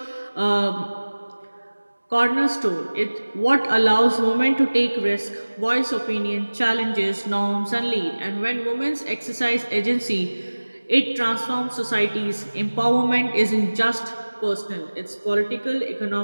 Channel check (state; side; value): inverted; both; correlation -1.00